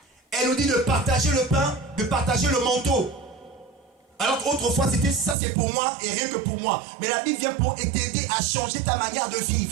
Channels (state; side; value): drops out; left; at 5.4 s